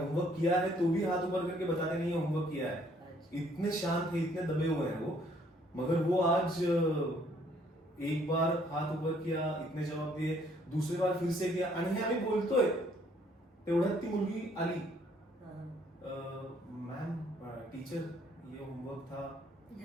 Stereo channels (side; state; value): both; normal; correlation 0.64